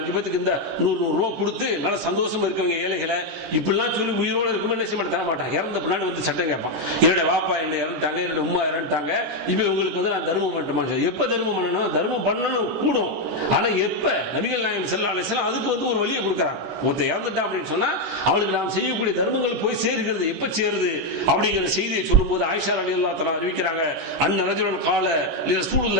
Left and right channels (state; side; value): late; left; 13 ms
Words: பேத்துக்கு இந்த 100 ரூபா கொடுத்து நல்ல சந்தோஷமா இருக்கவங்க ஏழைகளை இப்படிலாம் சொல்லி உயிரோடு இருக்கும்போது என்ன செய்ய மாட்டேன், தர மாட்டான். இறந்த பின்னாடி வந்து சட்டம் கேட்பான், என்னுடைய வாப்பா என்னை இறந்துட்டாங்க, என்னுடைய உமா இறந்துட்டாங்க, இப்ப உங்களுக்கு வந்து நான் தர்மம் பண்ணட்டுமா. எப்ப தர்மம் பண்ணணும், தர்மம் பண்ணணும் கூடும். ஆனா எப்ப நபிகள் நாயகம் ஸல்லல்லாஹு அலைஹி வஸல்லம் அதுக்கு வந்து ஒரு வழியை கொடுக்கறாங்க. ஒருத்தன் இறந்துட்டான் அப்படின்னு சொன்னா அவனுக்கு நாம் செய்யக்கூடிய தர்மங்கள் போய் சேருகிறது, எப்ப சேருது அப்படிங்கிற செய்தியை சொல்லும்போது ஆயிஷா ரலியல்லாஹு தஆலா அறிவிக்கிறாங்க, அன்ன ரஜுலன் கால